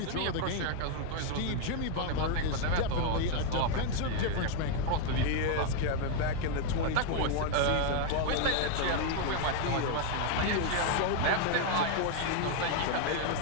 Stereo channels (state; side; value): different; both; correlation 0.01